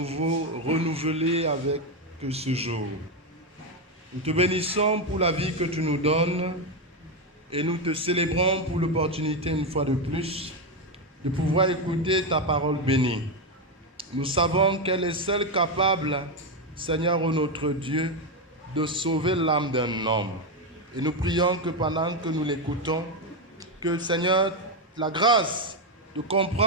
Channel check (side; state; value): both; normal; correlation 0.07